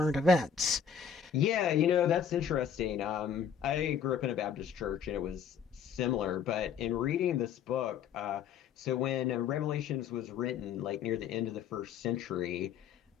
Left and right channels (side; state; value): right; quieter; 7.5 dB